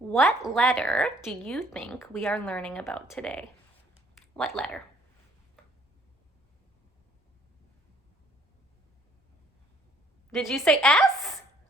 letter do you think we are learning about today? What letter? Did you say S?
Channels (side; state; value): both; normal; correlation 0.61